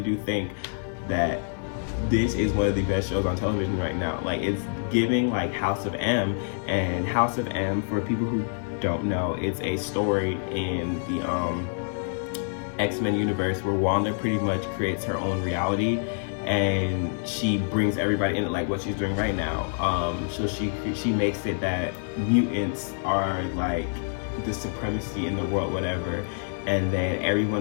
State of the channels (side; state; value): right; silent; 60 dB below the other